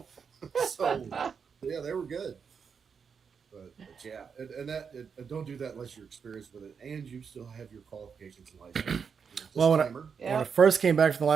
So yeah, they were good. But yeah, and don't do that unless you're experienced with it, and you still have your qualifications and license. Well, when I Disclaimer. first came back from the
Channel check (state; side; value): quieter; left; 6.3 dB